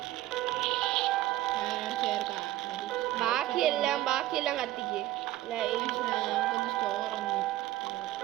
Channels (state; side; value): quieter; left; 15.6 dB